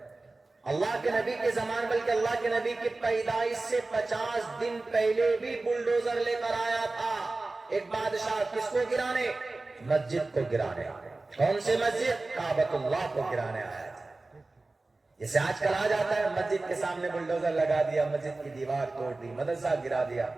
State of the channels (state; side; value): quieter; left; 3.2 dB